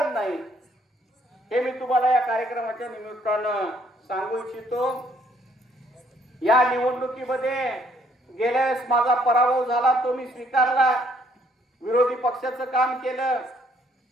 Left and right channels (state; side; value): normal; both; correlation 0.66